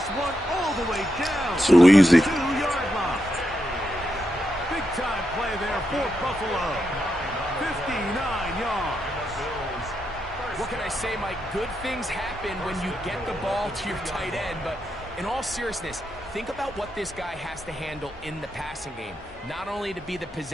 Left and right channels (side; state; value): both; normal; correlation 0.84